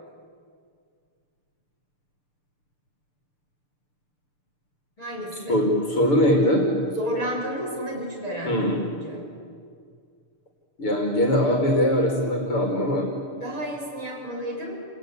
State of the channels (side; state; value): right; late; 6.8 ms